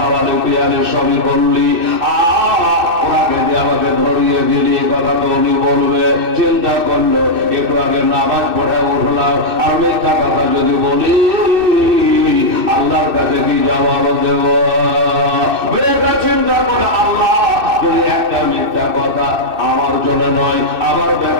পিয়ালে, সবই করলি, ওনাকে যে আমাকে ধরিয়ে দিলি, কথা তো উনি বলবে। চিন্তা করলো, একটু আগে নামাজ পড়ে উঠলাম, আর মিথ্যা কথা যদি বলি আল্লাহর কাছে কি জবাব দেব? চিন্তা করে আল্লাহ যদি একটা মিথ্যা কথা আমার জন্য নয়, আমার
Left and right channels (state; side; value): late; left; 2.6 ms